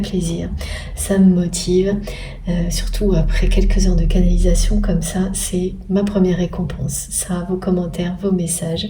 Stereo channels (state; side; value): identical; both; correlation 1.00